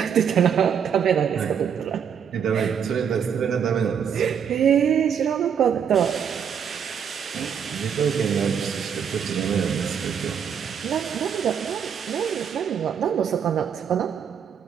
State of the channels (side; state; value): left; quieter; 7.6 dB